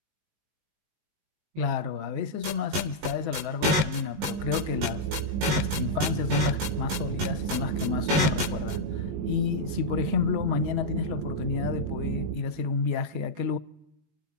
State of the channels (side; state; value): left; late; 19 ms